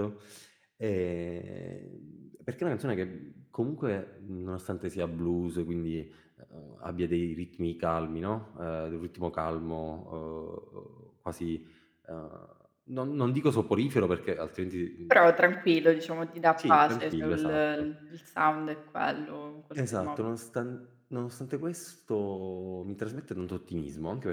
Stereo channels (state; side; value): identical; both; correlation 1.00